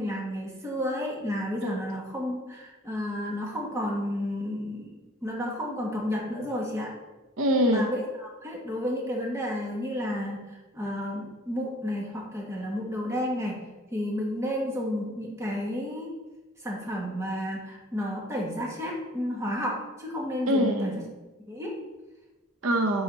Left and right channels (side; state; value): both; normal; correlation 0.52